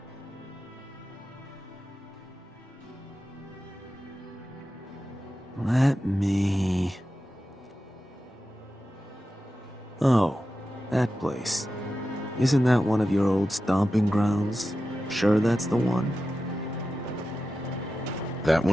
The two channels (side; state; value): both; normal; correlation 0.92